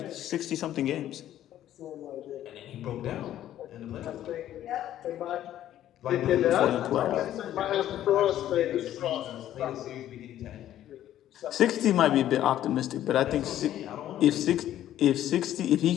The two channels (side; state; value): right; quieter; 12.2 dB